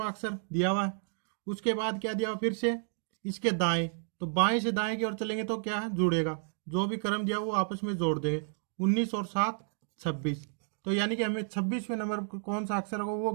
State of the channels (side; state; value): left; silent; digital silence